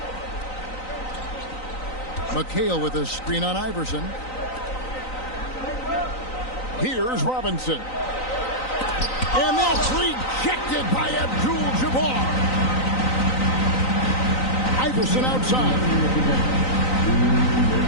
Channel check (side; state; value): right; late; 3.9 ms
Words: McHale with a screen on Iverson. Here's Robinson. And that's rejected by Abdul-Jabbar. Iverson outside.